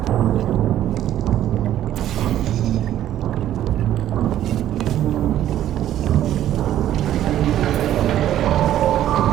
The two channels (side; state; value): left; quieter; 12.1 dB